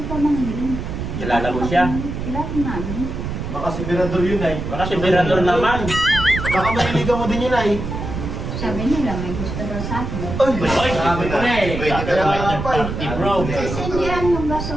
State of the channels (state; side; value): noise; right; rumble, 5 dB below the sound